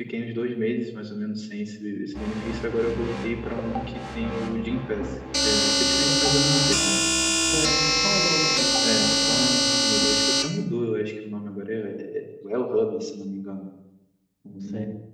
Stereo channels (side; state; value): both; identical; correlation 1.00